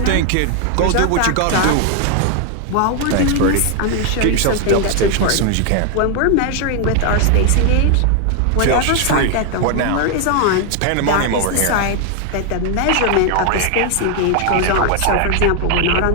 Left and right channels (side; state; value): both; different; correlation 0.00